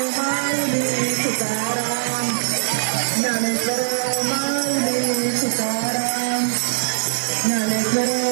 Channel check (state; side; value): silent; left; digital silence